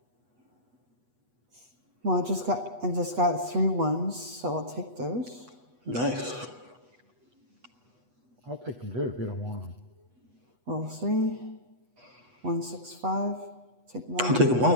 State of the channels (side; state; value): left; late; 8.2 ms